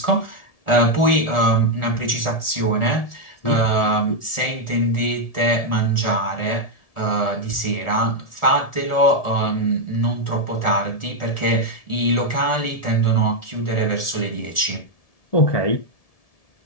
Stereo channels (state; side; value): late; right; 1.7 ms